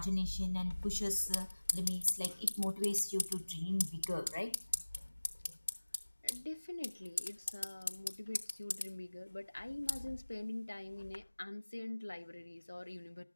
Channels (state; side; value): inverted; both; correlation -1.00